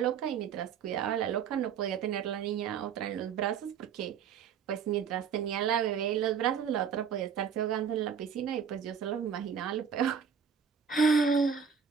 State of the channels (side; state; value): left; quieter; 7.0 dB